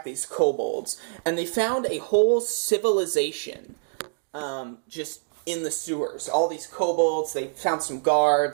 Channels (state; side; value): silent; left; digital silence